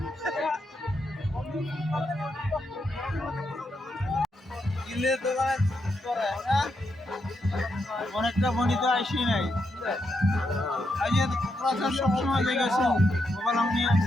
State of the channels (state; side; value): normal; both; correlation 0.82